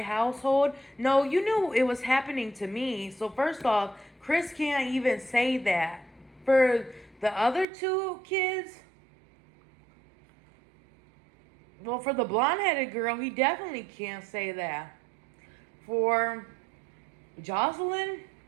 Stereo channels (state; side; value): drops out; left; at 7.7 s